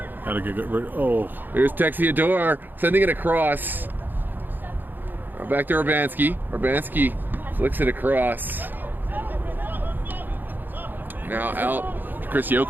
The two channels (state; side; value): late; left; 0.090 ms